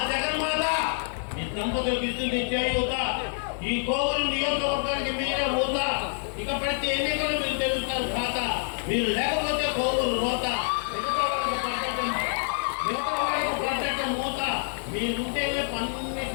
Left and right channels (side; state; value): right; silent; digital silence